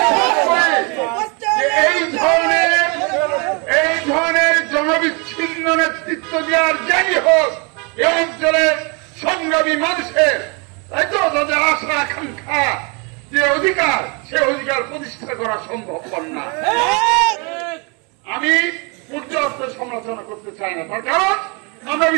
এই ধরনের জনবিচ্ছিন্ন নেতৃত্ব দেওয়ার যাই হোক, এই অঞ্চলের সংগ্রামী মানুষের, তাই তো, তাদের আশা আকাঙ্ক্ষা যে অধিকার, সে অধিকার প্রতিষ্ঠা করা সম্ভব না। আমি পর্যাপ্ত সমালোচনা করতে চাই না, তার কারণ আমরা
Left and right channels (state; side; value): quieter; left; 32.4 dB